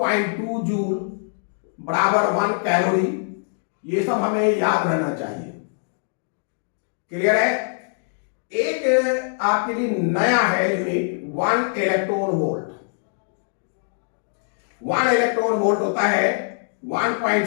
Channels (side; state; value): right; silent; digital silence